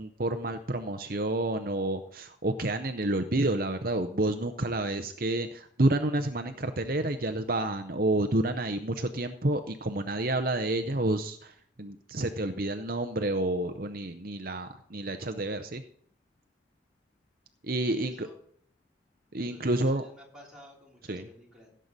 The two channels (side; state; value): both; normal; correlation 0.44